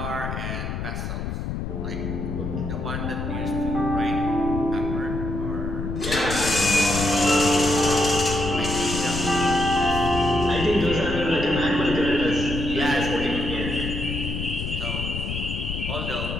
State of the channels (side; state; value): left; noise; rumble, 4 dB below the sound